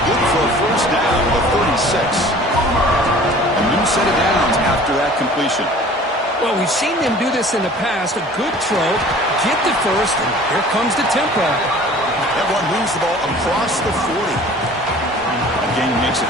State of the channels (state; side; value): normal; both; correlation 0.47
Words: good for a 1st down with a 36. A new set of downs after that completion. Well, we've seen them do this in the past. A good throw, get the first, and here comes the tempo. That one moves the ball across the 40. That gain makes